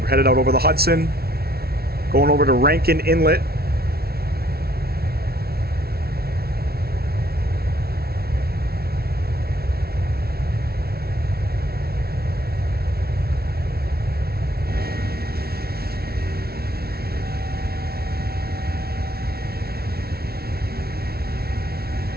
We're headed out over the Hudson, going over to Rankin Inlet.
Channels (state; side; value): late; left; 0.45 ms